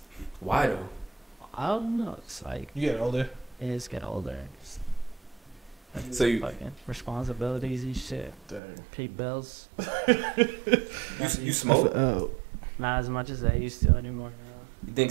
Why though? I don't know. It's like You get older. it's get older. It's So you fucking responsibilities and shit. Pay bills. you smoke? Oh. Not as much as I used to anymore. You think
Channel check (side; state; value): left; drops out; at 8.6 s